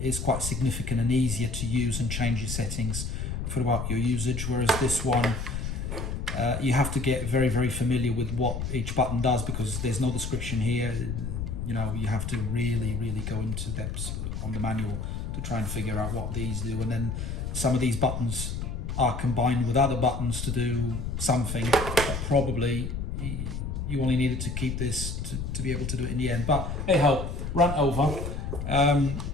quite significant and easier to use and change your settings throughout your usage. Whereas this one, you have to get very, very familiar with what each button does, because there's no description here. You have to really, really go into depths on the manual to try and figure out what these do. And then some of these buttons are combined with other buttons to do something that probably you only needed to keep this to be able to do it in the end. But hey ho, rant over.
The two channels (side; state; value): left; noise; rumble, 4 dB below the sound